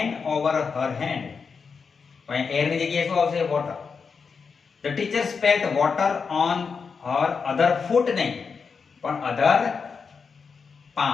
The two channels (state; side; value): quieter; right; 5.5 dB